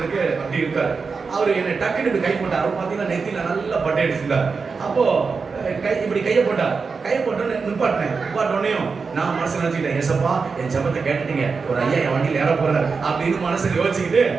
அப்படி இருக்கார். அவர் என்னை டக்குன்னு கை போட்டார். அவர் பார்த்தீங்கன்னா நெத்தியில நல்லா பட்டை அடிச்சிருந்தார். அப்போ இப்படி கையை போட்டார். கையை போட்டோன்னு நிப்பாட்டினோடனையும் நான் மனசு நினைச்சுக்கிட்டேன், ஏசப்பா என் ஜெபத்தை கேட்டுட்டீங்க, ஒரு ஐயா என் வண்டியில் ஏற போறாரு அப்படின்னு மனசுல யோசிச்சுக்கிட்டு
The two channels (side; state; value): left; quieter; 4.9 dB